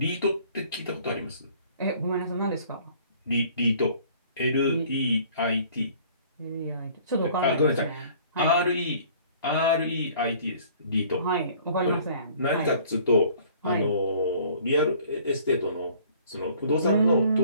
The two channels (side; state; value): both; inverted; correlation -0.54